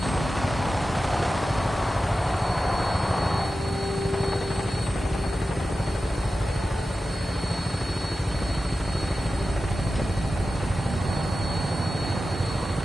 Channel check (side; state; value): both; normal; correlation 0.93